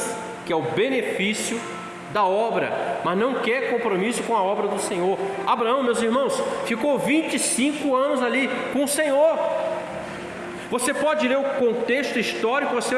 quer o benefício da obra, mas não quer compromisso com a obra do Senhor. Abraão, meus irmãos, ficou 25 anos ali com o Senhor. Você pode ler o contexto histórico, você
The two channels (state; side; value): identical; both; correlation 1.00